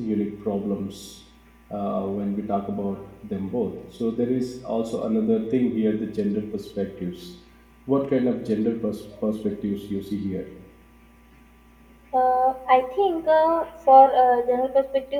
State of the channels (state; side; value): identical; both; correlation 1.00